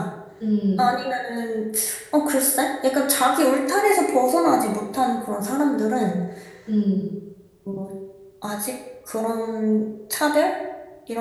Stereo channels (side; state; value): both; identical; correlation 1.00